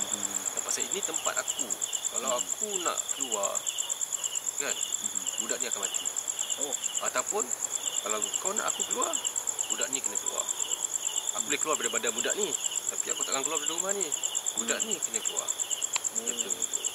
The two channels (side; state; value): both; identical; correlation 1.00